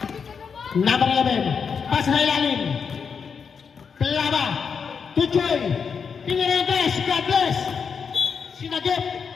Number 11, pas na ilalim. Clara, Tuchoy, Pinirentes, God bless. Sinagip,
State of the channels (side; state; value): right; quieter; 6.2 dB